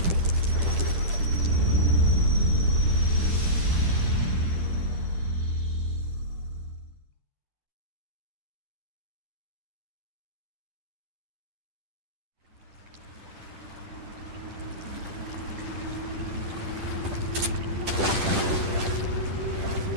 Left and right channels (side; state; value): left; late; 10 ms